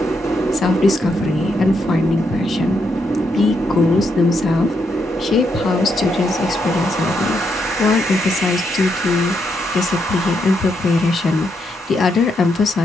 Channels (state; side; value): normal; both; correlation 0.79